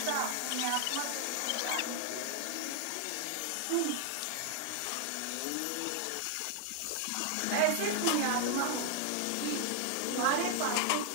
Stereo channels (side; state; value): both; different; correlation 0.00